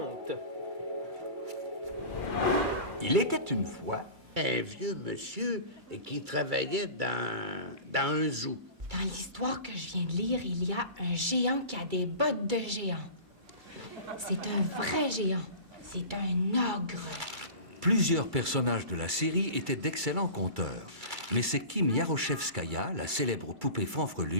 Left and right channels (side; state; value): left; late; 2.3 ms